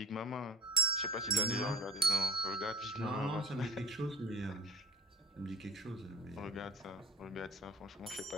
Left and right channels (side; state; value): both; normal; correlation 0.45